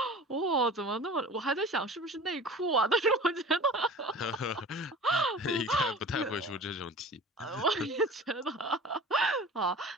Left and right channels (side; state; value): both; normal; correlation 0.39